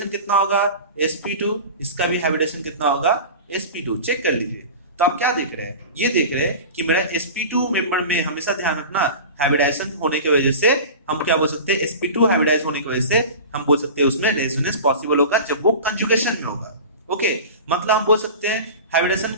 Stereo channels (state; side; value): inverted; both; correlation -0.33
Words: कितना होगा sp2, इसका भी हाइब्रिडेशन कितना होगा sp2, चेक कर लीजिए। तो आप क्या देख रहे हैं, ये देख रहे हैं कि मेरा sp2 मेंबर में हमेशा ध्यान रखना हाइब्रिडाइजेशन होने की वजह से हम क्या बोल सकते हैं, sp2 हाइब्रिडाइज होने की वजह से हम बोल सकते हैं उसमें रेजोनेंस पॉसिबल होगा जब वो कंजुगेशन में होगा। ओके, मतलब हम बोल सकते हैं हाइब्रिडेशन